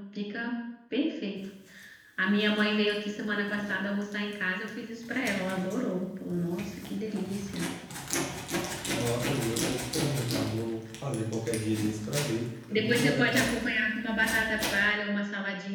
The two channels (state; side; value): identical; both; correlation 1.00